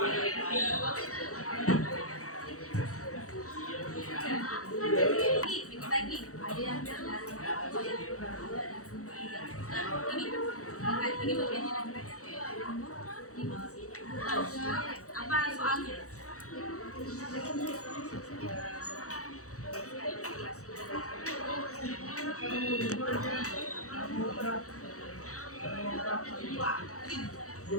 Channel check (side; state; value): right; late; 0.65 ms